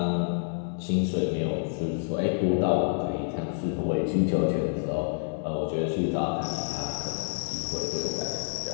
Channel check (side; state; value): right; silent; digital silence